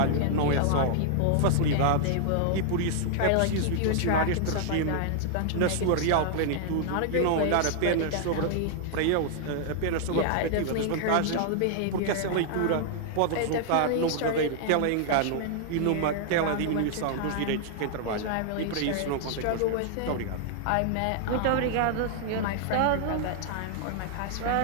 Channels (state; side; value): different; both; correlation -0.01